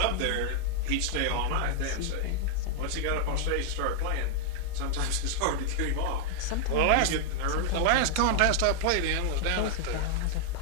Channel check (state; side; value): different; both; correlation 0.00